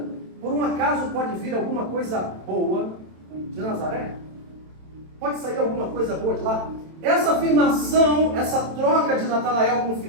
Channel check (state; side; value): late; left; 27 ms